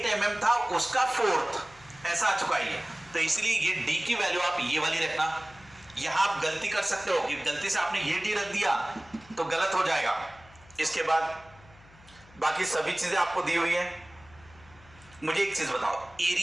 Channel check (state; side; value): noise; left; hum, 24 dB below the sound